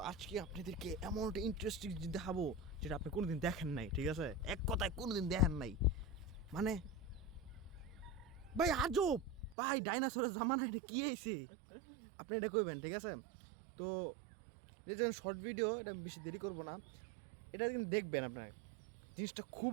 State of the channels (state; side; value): drops out; left; at 9.6 s